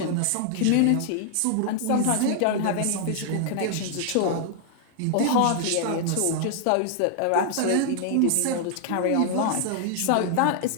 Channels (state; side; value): different; both; correlation -0.01